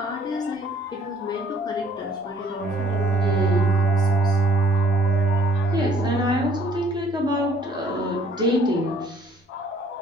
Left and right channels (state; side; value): normal; both; correlation 0.58